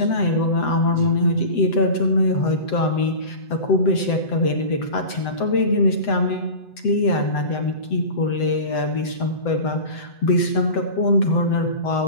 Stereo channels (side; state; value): right; late; 7.9 ms